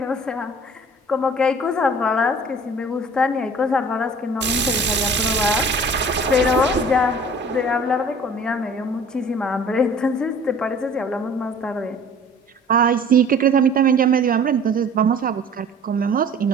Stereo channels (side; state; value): both; normal; correlation 0.47